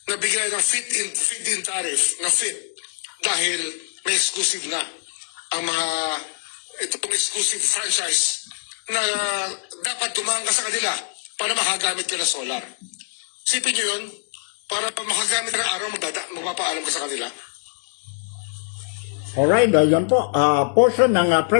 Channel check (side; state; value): right; silent; 63 dB below the other